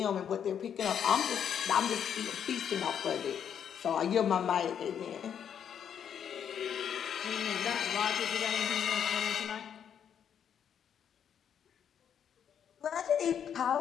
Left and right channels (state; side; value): quieter; right; 8.5 dB